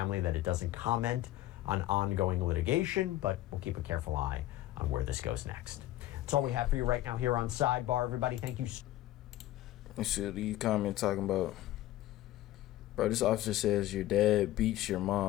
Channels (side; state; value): right; quieter; 14.9 dB